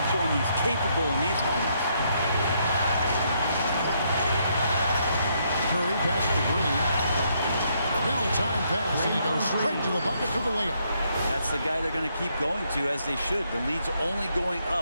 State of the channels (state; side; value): inverted; both; correlation -0.74